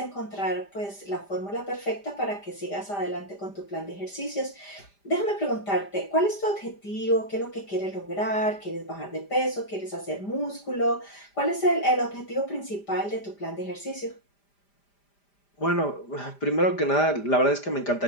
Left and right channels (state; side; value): late; right; 5.0 ms